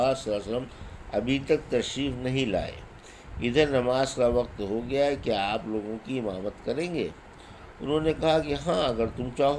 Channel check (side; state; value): both; identical; correlation 1.00